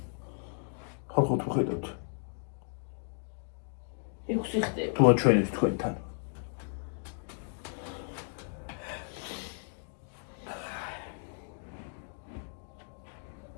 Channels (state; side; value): silent; right; 55 dB below the other